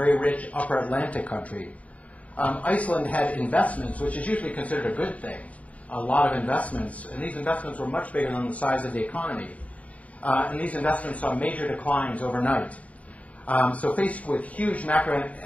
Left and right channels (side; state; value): right; late; 0.068 ms